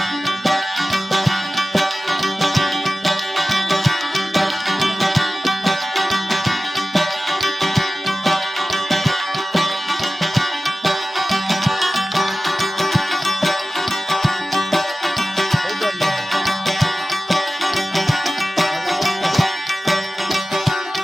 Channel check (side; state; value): both; normal; correlation 0.96